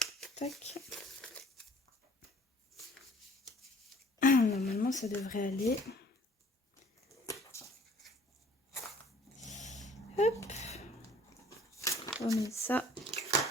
Tac. Normalement, ça devrait aller. Hop. On met ça.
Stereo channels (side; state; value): both; normal; correlation 0.54